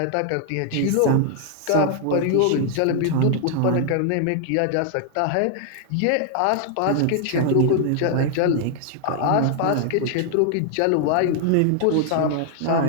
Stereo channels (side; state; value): both; different; correlation 0.00